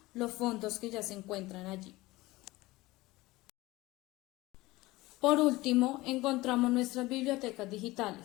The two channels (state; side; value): quieter; right; 19.7 dB